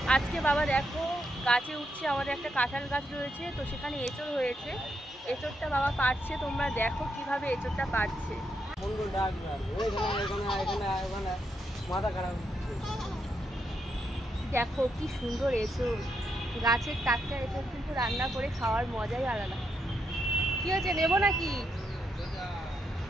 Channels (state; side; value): normal; both; correlation 0.81